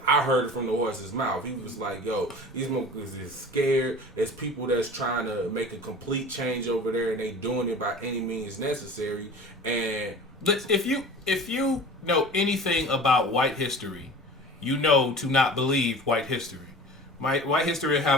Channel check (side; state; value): both; normal; correlation 0.39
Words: I heard it from the horse's mouth. He was like, yo, these motherfuckers is scared. It's people that's trying to make a complete change over there, and they doing it by any means necessary. And if you know anything about white history, you know to not believe white history. White history